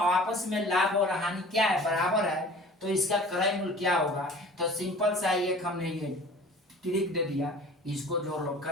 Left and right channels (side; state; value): both; normal; correlation 0.45